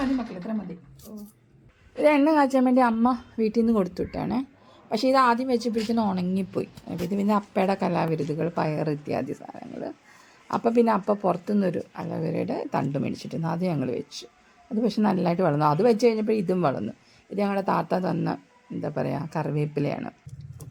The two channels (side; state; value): both; identical; correlation 1.00